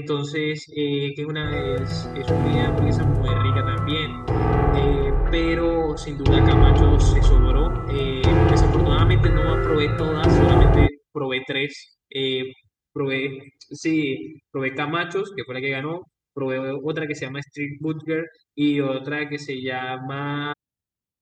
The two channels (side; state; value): both; identical; correlation 1.00